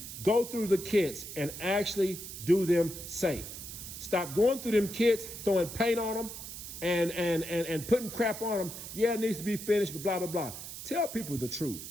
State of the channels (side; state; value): right; noise; hiss, 10 dB below the sound